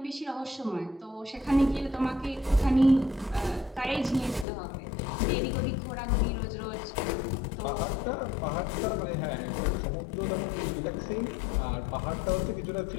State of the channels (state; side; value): drops out; right; at 4.5 s